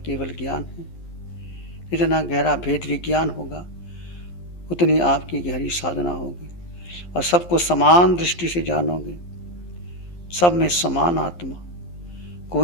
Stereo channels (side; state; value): right; late; 11 ms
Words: ज्ञान है। जितना गहरा भेद विज्ञान होगा उतनी आपकी गहरी साधना होगी और सबको समान दृष्टि से जानोगे। सब में समान आत्मा,